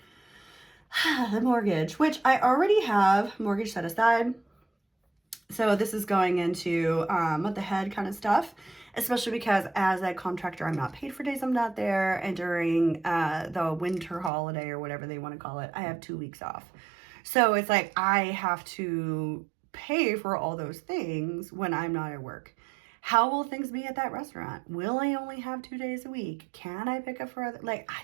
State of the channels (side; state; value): left; drops out; at 14.3 s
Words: the mortgage, which I already have mortgage set aside. So this is going into month ahead kind of stuff, especially because as a contractor, I'm not paid for days I'm not there. And during the winter holiday or whatever they want to call it, I have 2 weeks off. So it's like I have to pay for all those things when I'm not at work. How will things be at that restaurant? Will I only have 2 days a week? Can I pick up for other, I